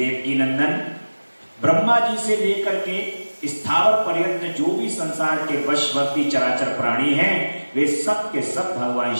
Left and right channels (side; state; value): both; inverted; correlation -1.00